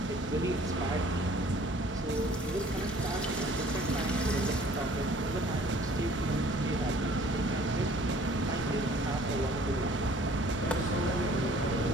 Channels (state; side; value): normal; both; correlation 0.54